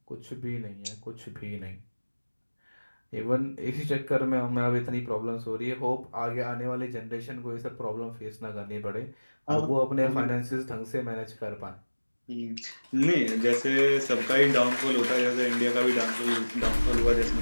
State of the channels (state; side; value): inverted; both; correlation -1.00